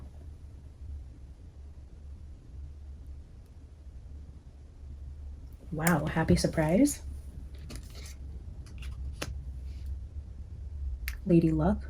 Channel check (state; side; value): identical; both; correlation 1.00